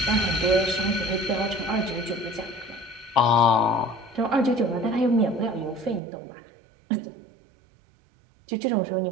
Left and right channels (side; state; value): left; drops out; at 6.0 s